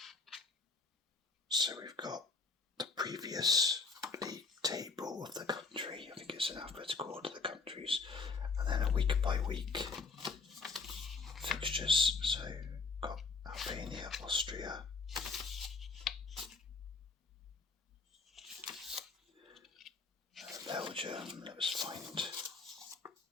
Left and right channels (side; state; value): right; quieter; 4.3 dB